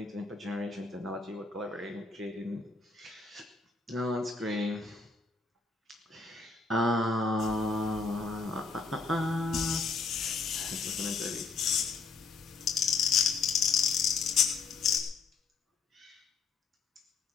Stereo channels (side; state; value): right; quieter; 4.5 dB